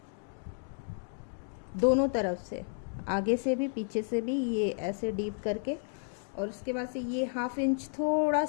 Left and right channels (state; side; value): silent; right; digital silence